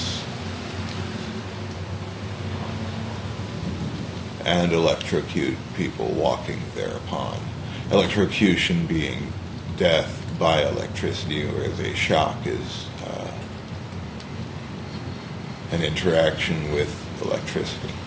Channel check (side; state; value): both; identical; correlation 1.00